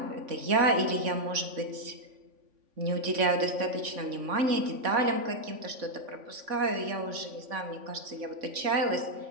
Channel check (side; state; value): left; late; 3.5 ms